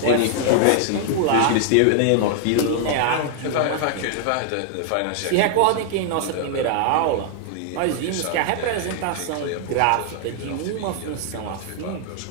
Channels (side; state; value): both; different; correlation 0.00